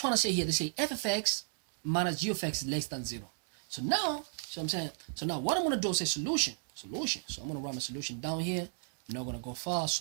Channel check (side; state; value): left; silent; digital silence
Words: to say here? They say f of x minus g of x is less than 0. So now, so now what I'm gonna do is say solution. So I'm gonna write my solution down here. I'm not gonna go far.